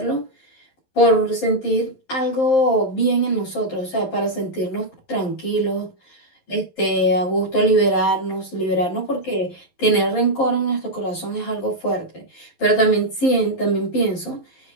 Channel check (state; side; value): late; right; 11 ms